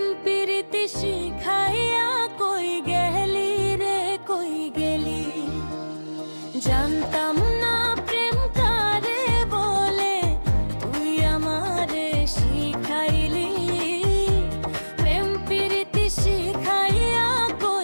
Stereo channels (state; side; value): inverted; both; correlation -1.00